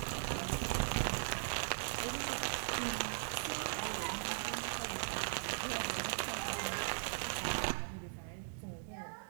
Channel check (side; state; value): left; silent; digital silence